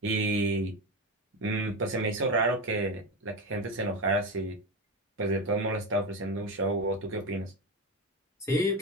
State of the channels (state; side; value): normal; both; correlation 0.18